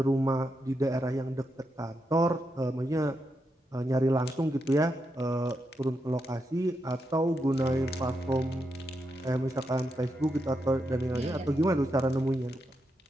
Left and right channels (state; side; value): normal; both; correlation 0.84